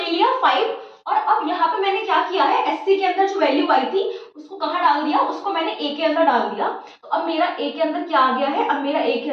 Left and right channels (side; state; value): both; identical; correlation 1.00